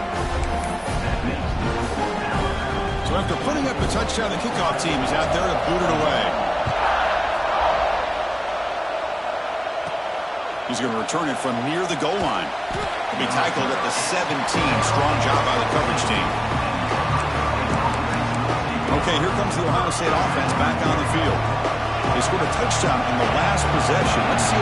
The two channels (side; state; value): both; identical; correlation 1.00